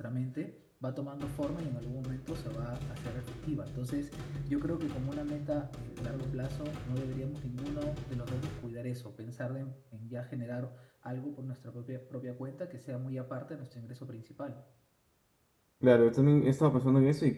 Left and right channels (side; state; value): both; identical; correlation 1.00